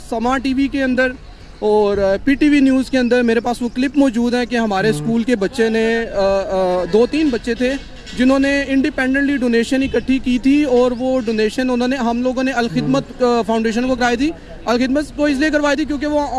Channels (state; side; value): identical; both; correlation 1.00